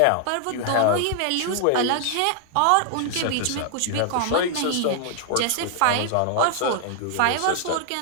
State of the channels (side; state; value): both; different; correlation 0.00